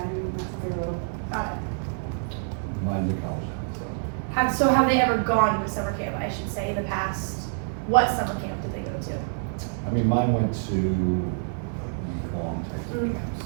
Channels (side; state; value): left; silent; digital silence